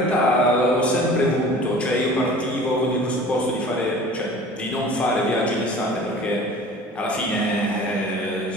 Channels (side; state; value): both; normal; correlation 0.43